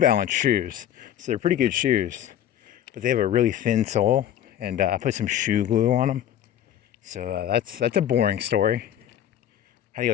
shoes, so they're pretty good shoes. But they have a really thin sole, and I put some shoe glue on them. So that's a boring story. How do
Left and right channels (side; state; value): right; quieter; 10.9 dB